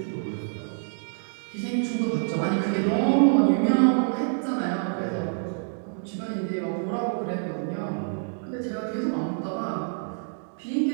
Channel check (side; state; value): left; silent; 60 dB below the other